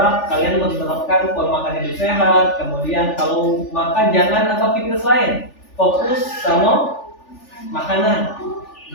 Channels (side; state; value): right; late; 3.4 ms